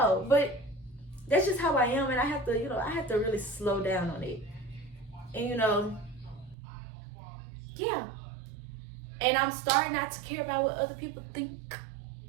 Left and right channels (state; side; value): drops out; left; at 6.6 s